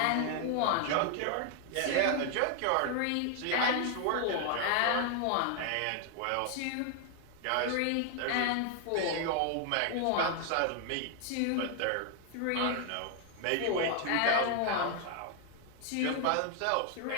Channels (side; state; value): both; different; correlation 0.00